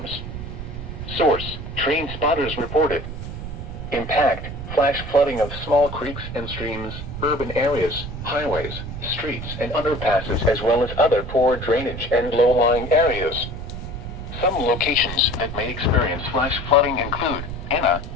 Source: trained spotters reported. Impact: flash flooding of small creeks and streams, urban areas, highways, streets and underpasses, as well as other poor drainage and low-lying areas. Some locations that may experience flash flooding include Anna,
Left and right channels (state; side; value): noise; right; rumble, 8 dB below the sound